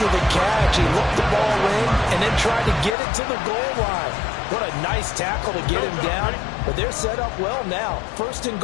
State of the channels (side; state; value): right; drops out; at 3.0 s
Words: the catch. He looked the ball in and then tried to get it to the goal line. What a nice tackle to get him down. But they're set up well now. First and